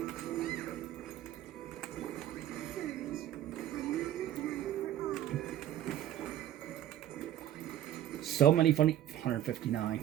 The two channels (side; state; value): left; quieter; 12.1 dB